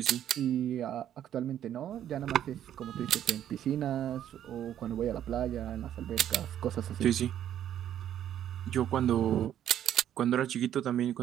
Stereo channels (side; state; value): left; quieter; 10.7 dB